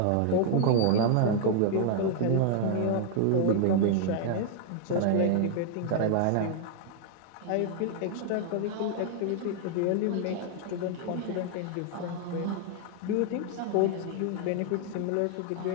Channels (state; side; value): different; both; correlation 0.00